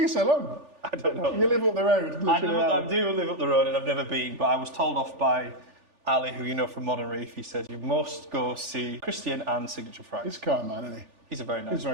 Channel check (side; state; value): left; late; 3.4 ms